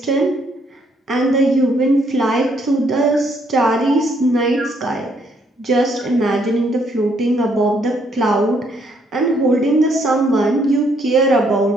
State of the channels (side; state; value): both; normal; correlation 0.70